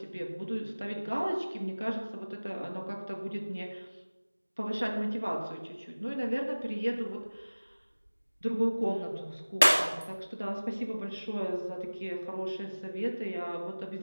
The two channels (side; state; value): both; inverted; correlation -1.00